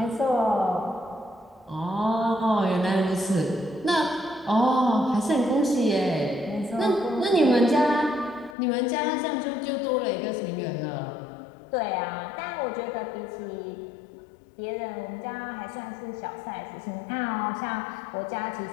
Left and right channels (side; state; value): right; drops out; at 8.6 s